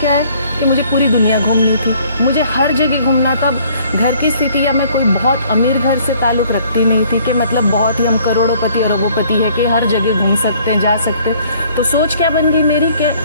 है कि मुझे पूरी दुनिया घूमनी थी, मुझे हर जगह घूमना। तब घर की स्थिति या मैं कोई बहुत अमीर घर से ताल्लुक़ रखती नहीं थी कि मतलब बहुत ही हम करोड़ोंपति और अरबोंपति है कि हर जगह घूम सकते हैं, जा सकते हैं। तो सोच क्या बन गई मेरी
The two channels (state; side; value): inverted; both; correlation -0.59